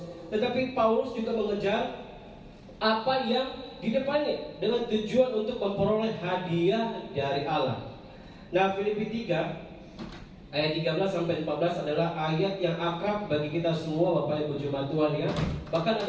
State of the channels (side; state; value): both; identical; correlation 1.00